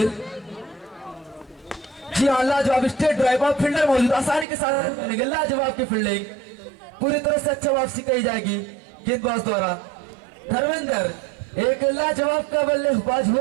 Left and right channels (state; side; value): drops out; left; at 4.5 s